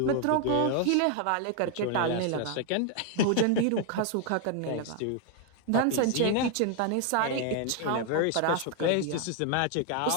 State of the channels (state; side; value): different; both; correlation 0.00